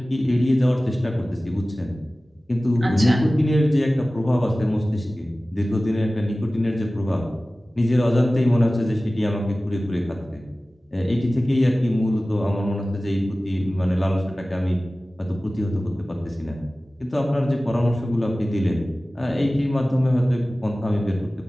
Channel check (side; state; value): both; normal; correlation 0.97